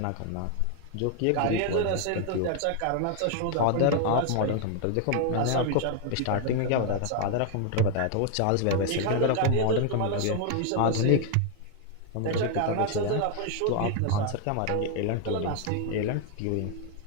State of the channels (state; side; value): different; both; correlation 0.00